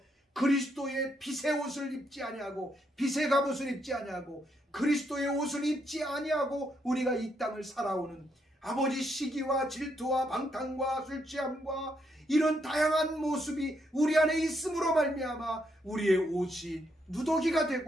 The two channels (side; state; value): both; normal; correlation 0.77